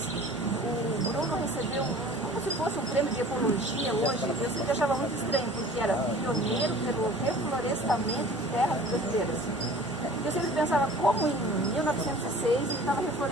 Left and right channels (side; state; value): both; normal; correlation 0.45